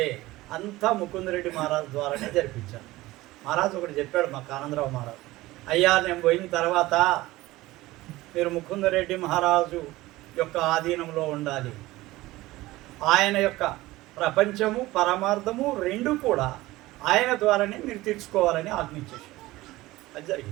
అంతా ముకుందరెడ్డి మహారాజు ద్వారానే జరిపించాను. మహారాజు ఒకటి చెప్పాడు మాకు, ఆనందరావు మహారాజు, అయ్యా నేను పోయిన తర్వాత మీరు ముకుందరెడ్డి మహారాజు యొక్క ఆధీనంలో ఉండాలి. ఆయన యొక్క ప్రపంచము పరమార్థము 2 కూడా ఆయన ద్వారానే మీరు తీర్చుకోవాలని ఆజ్ఞించేశారు. అది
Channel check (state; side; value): quieter; left; 18.4 dB